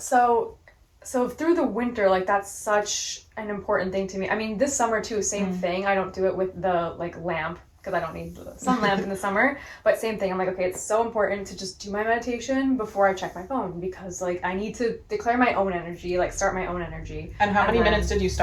through the winter, like, that's such an important thing to me. I mean, this summer too, same thing. I don't do it with the like lamp, because I don't need the sun lamp in the summer. But same thing. I'm like, okay, it's so important to just do my meditation before I check my phone, because like, I need to declare my own energy, like start my own energy. And how many minutes did you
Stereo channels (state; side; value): identical; both; correlation 1.00